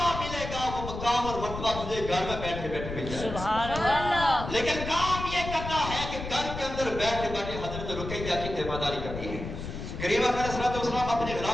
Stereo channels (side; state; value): left; noise; rumble, 7 dB below the sound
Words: ملے گا، وہ مقام اور مرتبہ تجھے گھر میں بیٹھے بیٹھے مل جائے گا۔ سبحان اللہ۔ لیکن کام یہ کرنا ہے کہ گھر کے اندر بیٹھے بیٹھے حضرت رقیہ کی تیمارداری کرنی ہے۔ کریم اکرم صلی اللہ علیہ وسلم اپنے